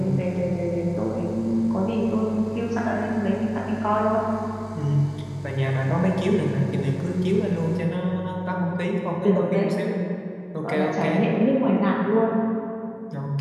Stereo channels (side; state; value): both; identical; correlation 1.00